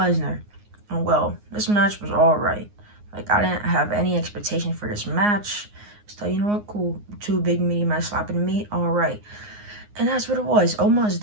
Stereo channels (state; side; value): late; left; 9.6 ms